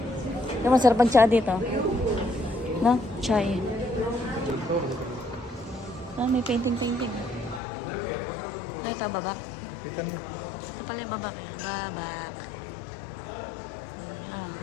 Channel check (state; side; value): drops out; right; at 7.6 s